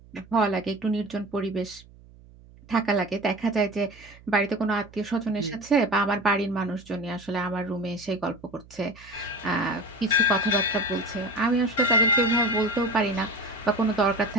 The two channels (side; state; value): right; noise; hum, 23 dB below the sound